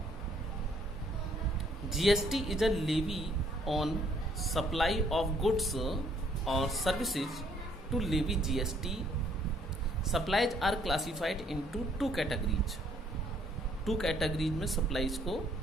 GST is a levy on supply of goods or services. To levy GST, supplies are classified into 2 categories. 2 categories में supplies को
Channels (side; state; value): both; normal; correlation 0.65